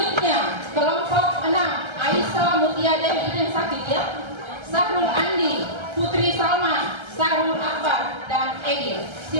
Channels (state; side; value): late; left; 1.3 ms